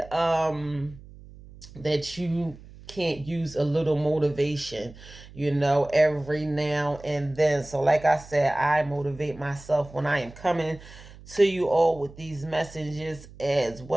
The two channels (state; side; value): noise; right; hum, 19 dB below the sound